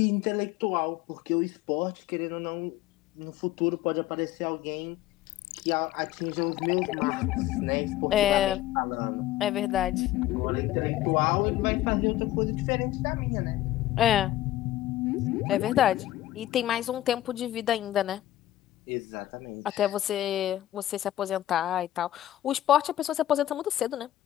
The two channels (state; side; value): quieter; right; 14.0 dB